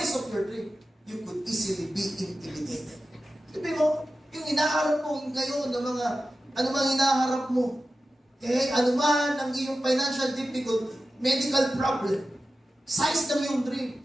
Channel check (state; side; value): normal; both; correlation 0.93